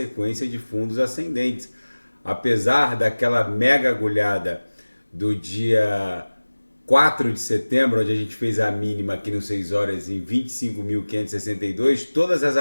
de fundos ascendentes. Apesar daquela mega agulhada do dia 4 de setembro, onde a gente fez a mínima aqui no 6 horas em 25.562, todas as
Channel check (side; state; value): both; inverted; correlation -1.00